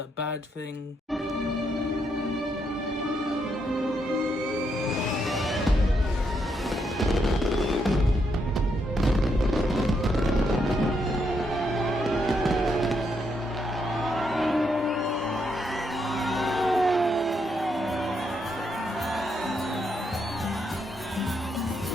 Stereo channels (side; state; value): both; normal; correlation 0.78